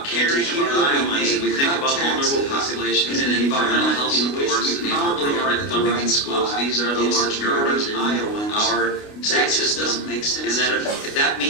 caring about Iowans, and we think about vulnerable populations in an environment in which we probably are at the right spot, these are the large drivers in Iowans. That just doesn't make sense. And that if that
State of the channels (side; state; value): right; late; 29 ms